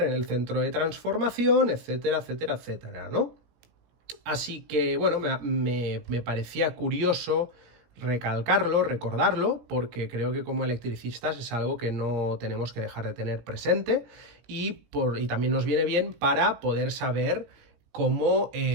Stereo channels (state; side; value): late; left; 17 ms